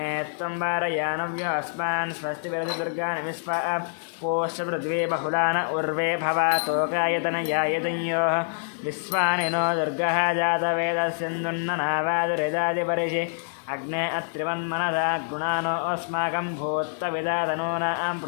త్వం వారయానవ్యో అస్మాన్ స్వస్తి విరసి దుర్గాని విశ్వా పోష్య పృథ్వీ బహుళాన ఉర్వే భవాతోకాయతనయాయతన్యోః విశ్వాని నో దుర్గः జాతవేదస్యందున్ననావాదురిదాదిపరిషి అగ్నే అత్రివన్మనసా గుణానో అస్మాకం భూత్వవిదాతనూనాం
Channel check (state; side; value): silent; right; digital silence